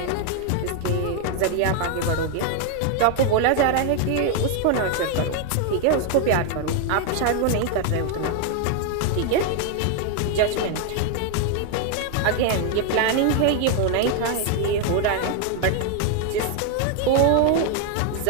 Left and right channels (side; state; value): both; different; correlation 0.01